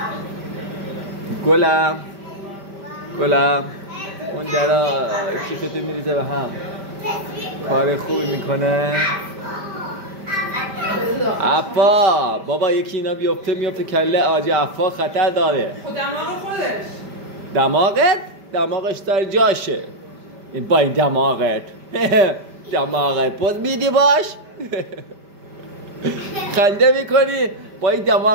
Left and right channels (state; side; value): late; left; 5.1 ms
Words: گلم اون درا کیفتو میریزه به هم. کار خوبی میکنه. عفا بابا یکی اینا بیفته میفته کله آجی عفا خطر داره. خود دماغ خودش. دماغش داره جاشه. این با این دماغت پوز میدی باش. خنده میکنی با این